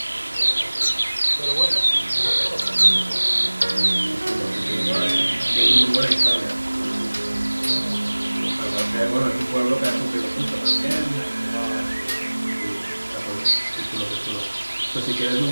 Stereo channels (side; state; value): both; inverted; correlation -1.00